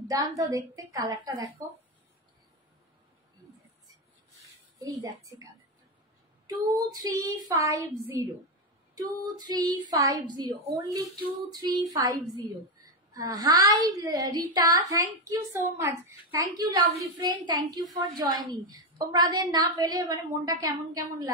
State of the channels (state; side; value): normal; both; correlation 0.09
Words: দেখতে। কালারটা দেখো, এই যাচ্ছে কালারটা 2350, only 2350। Hi Rita, thank you so much, thank you lovely friend, thank you for joining. তোমাদের না পেলে মানে মনটা কেমন কেমন